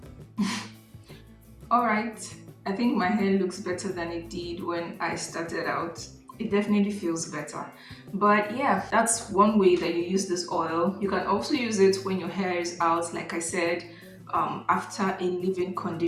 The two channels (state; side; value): identical; both; correlation 1.00